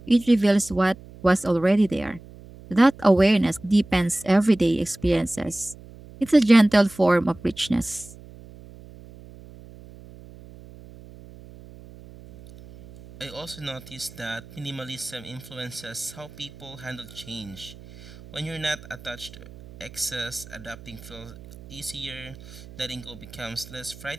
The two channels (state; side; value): noise; right; hum, 19 dB below the sound